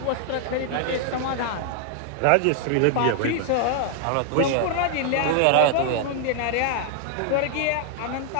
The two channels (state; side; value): different; both; correlation 0.00